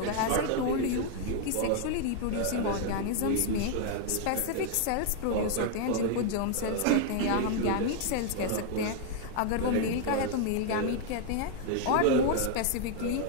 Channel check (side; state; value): both; different; correlation 0.00